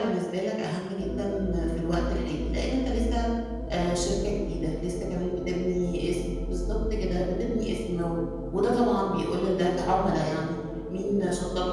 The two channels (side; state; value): both; identical; correlation 1.00